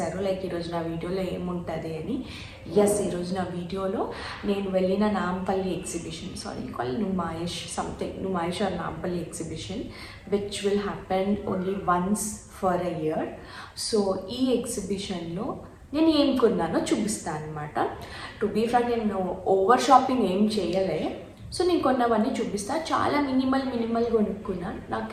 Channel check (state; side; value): identical; both; correlation 1.00